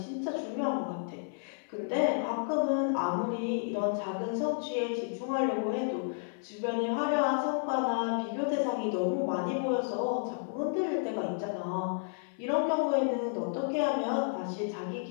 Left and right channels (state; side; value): silent; right; 57 dB below the other